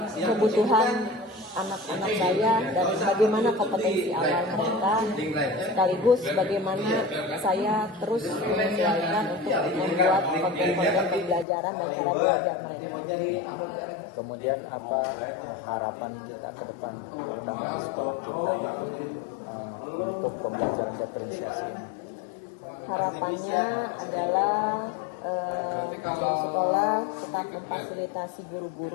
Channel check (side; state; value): right; drops out; at 11.5 s